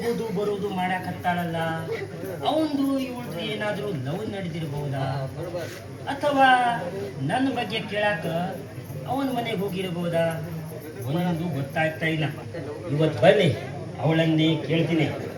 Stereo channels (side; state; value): both; identical; correlation 1.00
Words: ಬರೋದು ಮಾಡಾಕತ್ತಾಳಲ್ಲ, ಅವಂದು ಇವಳ್ದು ಏನಾದ್ರೂ ಲವ್ ನಡೆದಿರಬಹುದಾ? ಅಥವಾ ನನ್ನ ಬಗ್ಗೆ ಕೇಳಾಕ ಅವನ ಮನೆಗೆ ಹೋಗಿರಬಹುದಾ? ಒಂದು ಗೊತ್ತಾಗ್ತಾ ಇಲ್ಲ. ಇವತ್ತು ಬನ್ನಿ, ಅವಳನ್ನೇ ಕೇಳ್ತೀನಿ.